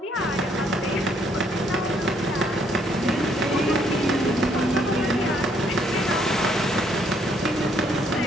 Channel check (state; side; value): normal; both; correlation 0.69